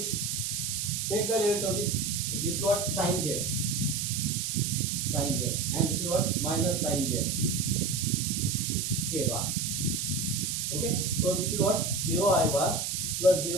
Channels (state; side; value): noise; right; hiss, 1 dB below the sound